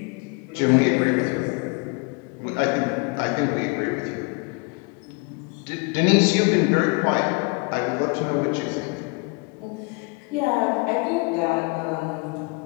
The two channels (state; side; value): quieter; right; 30.5 dB